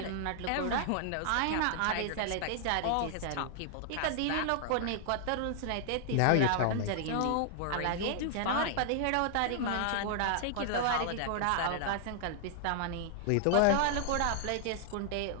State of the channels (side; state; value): both; different; correlation -0.01